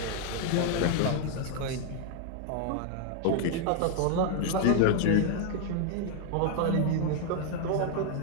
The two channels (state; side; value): different; both; correlation 0.00